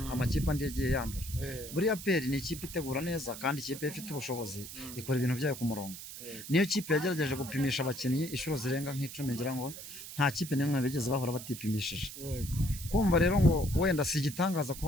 amakipe andi yagiye yandura. Buriya APR ni ikipe itegura neza kandi ikipe ifite ubushobozi ikora ibintu byayo ku murongo. Niyo kipe yagerageje gupimisha abakinnyi inshuro zirenga nk'icumi, ngira ngo nta kipe n'imwe bigeze bahora batipimishije. Kumva rero ngo wenda si igitangaza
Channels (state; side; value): noise; right; hiss, 11 dB below the sound